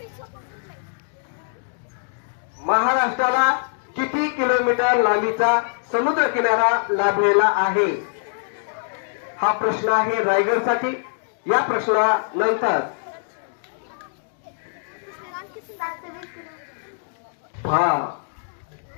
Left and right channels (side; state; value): right; silent; digital silence